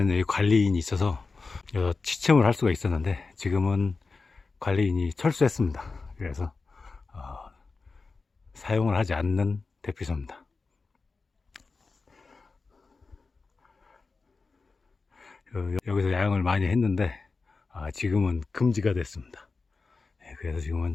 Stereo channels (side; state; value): right; quieter; 4.2 dB